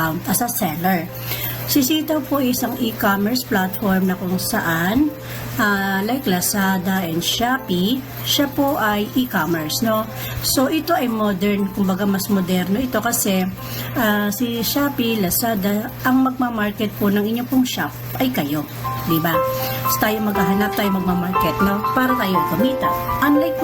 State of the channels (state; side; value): identical; both; correlation 1.00